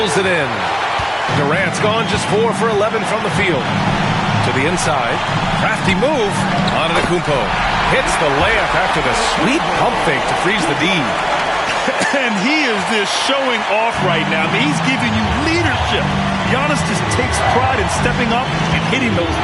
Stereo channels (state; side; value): identical; both; correlation 1.00